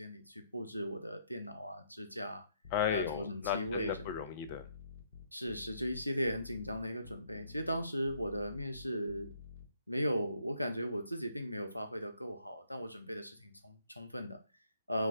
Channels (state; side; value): inverted; both; correlation -0.70